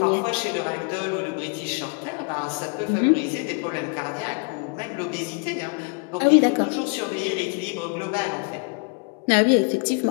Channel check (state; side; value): quieter; right; 35.4 dB